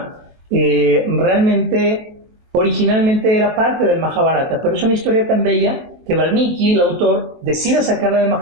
realmente originalmente era parte del Mahabharata, pero es una historia tan bella que Valmiki, el autor, decide sacarla del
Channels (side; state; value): left; late; 23 ms